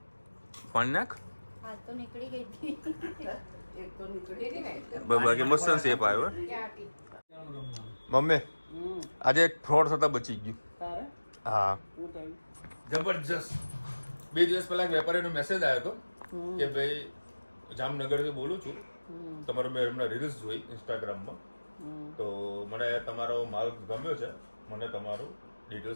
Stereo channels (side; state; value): both; inverted; correlation -1.00